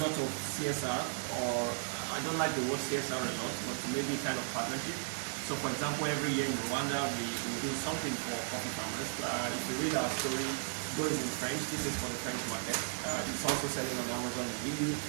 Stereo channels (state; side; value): silent; left; digital silence